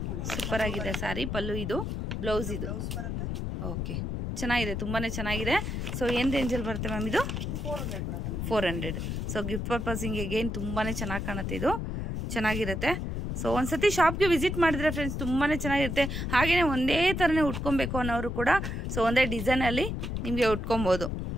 ಸೂಪರ್ ಆಗಿದೆ ಸ್ಯಾರಿ. ಪಲ್ಲು ಇದು, ಬ್ಲೌಸ್ ಇದು. ಓಕೆ, ಚೆನ್ನಾಗಿದೆ, ತುಂಬಾ ಚೆನ್ನಾಗಿದೆ. ಸೊ ಏನು ರೇಂಜಲ್ಲಿ ಬರುತ್ತೆ ಮ್ಯಾಮ್ ಇದು? 400. ಸೊ ಗಿಫ್ಟ್ ಪರ್ಪಸಿಂಗ್ ಅಗೇನ್ ತುಂಬಾ ಚೆನ್ನಾಗಿ ಕಾಣುತ್ತೆ, ಇದು ಚೆನ್ನಾಗಿರುತ್ತೆ. ಸೊ ಒಂದ್ಸತಿ ಶಾಪ್ಗೆ ವಿಸಿಟ್ ಮಾಡಿದ್ರೆ ಫ್ರೆಂಡ್ಸ್ ತುಂಬಾ ಚೆನ್ನಾಗಿರುತ್ತೆ. ಹಾಗೆಯೇ ಒಂದೇ ಥರನೇ ಉಟ್ಕೊಬೇಕು ಅನ್ನೋರು ಕೂಡ ಸೊ ಒಂದೇ ಡಿಸೈನಲ್ಲಿ ನಿಮಗೆ ಉಟ್ಕೊಬೋದು.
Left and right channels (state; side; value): noise; left; rumble, 3 dB below the sound